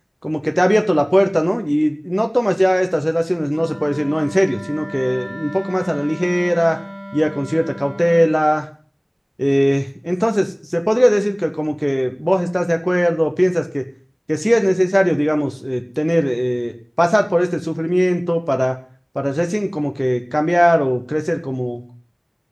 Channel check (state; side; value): identical; both; correlation 1.00